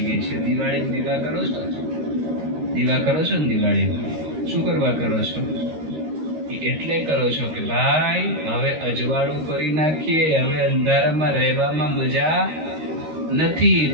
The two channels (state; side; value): late; left; 13 ms